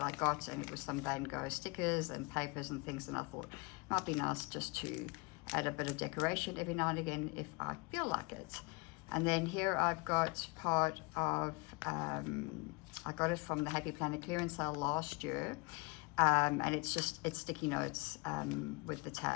I got, and it was some Van Gogh stickers and papers and things, and I thought it might be nice just to add a bit of decoration every now and again if I feel like it. And then here I've got part of, I got it from the Happy Planner clearance sale last year, and it's sticky notes with the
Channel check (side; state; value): right; quieter; 27.8 dB